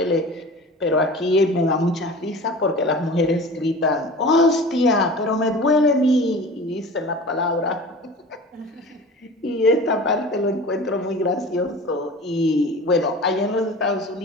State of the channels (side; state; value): both; normal; correlation 0.37